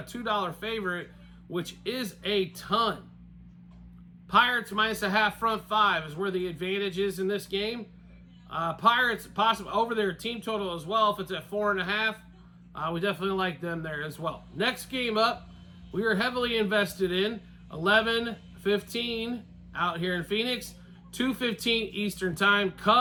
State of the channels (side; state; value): both; identical; correlation 1.00